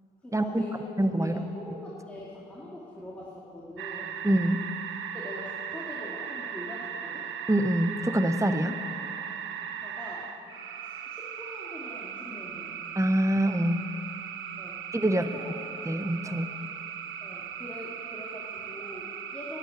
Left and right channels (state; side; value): normal; both; correlation 0.77